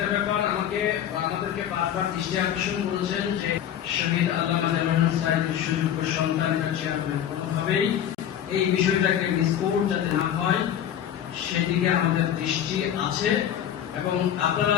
ব্যাপার আমাদেরকে বারবার দৃষ্টি আকর্ষণ করেছেন যে শহীদ আল্লামা দেলোয়ার সাইদের সুযোগ্য সন্তানরা চেয়ারম্যান, কোনোভাবেই এই বিষয়টাকে মিসকোট যাতে না হয় সেদিকে আমাদের দৃষ্টি আছে। এবং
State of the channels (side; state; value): right; quieter; 10.1 dB